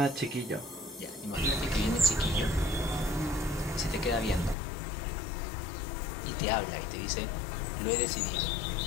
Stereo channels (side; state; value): right; drops out; at 4.5 s